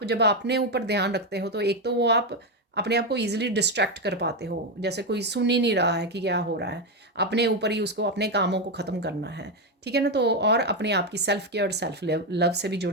जब अपने ऊपर ध्यान रखते हो, तो एक तो वो आप अपने आप को ईजिली डिस्ट्रैक्ट कर पाते हो, जैसे कोई सुन ही नहीं रहा है कि क्या हो रहा है, अपने ऊपर ही उसको, अपने कामों को ख़त्म करना है। ठीक है ना, तो और अपने आप की सेल्फ केयर, सेल्फ लव से भी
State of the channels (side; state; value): both; normal; correlation 0.08